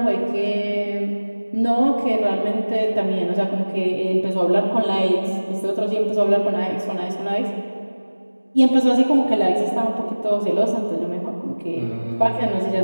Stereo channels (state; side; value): inverted; both; correlation -1.00